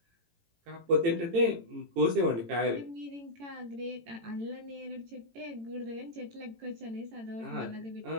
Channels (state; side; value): late; left; 18 ms